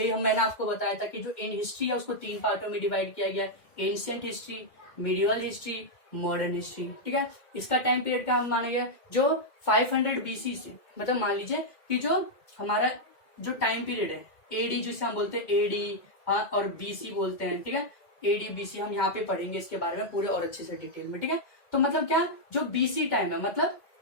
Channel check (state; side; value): late; right; 2.0 ms